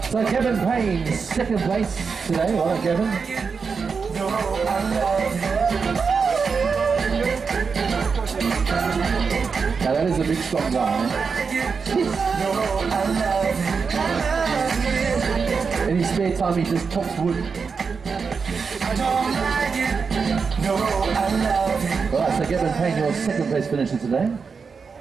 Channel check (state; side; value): quieter; left; 5.4 dB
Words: it. So Kevin Payne, second place today. Well done, Kevin. No, I love it. Now that is a big strong guy. No, I love it. In his spare time, he just chops wood. I don't like it. No, I love it. Alright, so Kevin Payne, your second place finisher today.